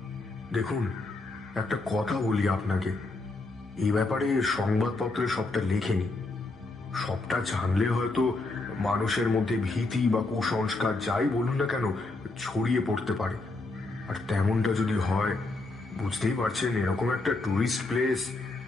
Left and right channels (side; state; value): right; quieter; 3.2 dB